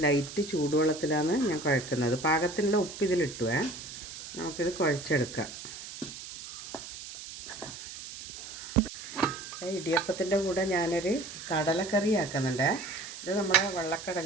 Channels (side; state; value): right; noise; hiss, 11 dB below the sound